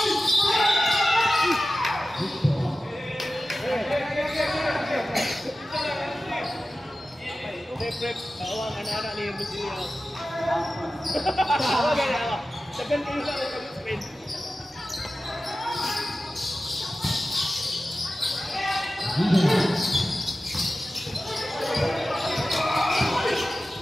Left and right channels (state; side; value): normal; both; correlation 0.94